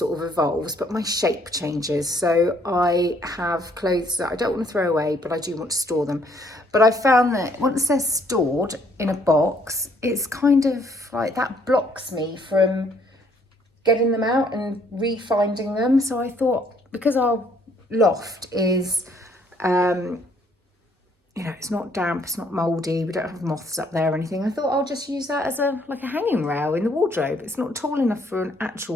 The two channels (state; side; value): normal; both; correlation 0.66